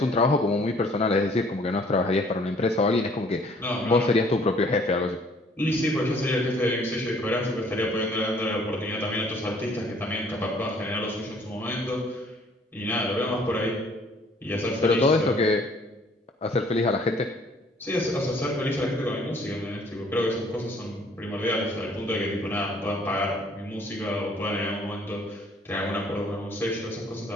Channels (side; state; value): both; normal; correlation 0.59